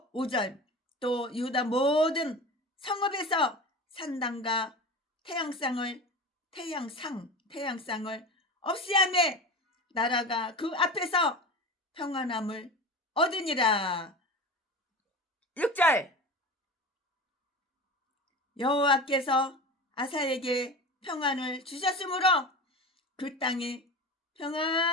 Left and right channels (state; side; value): normal; both; correlation 0.30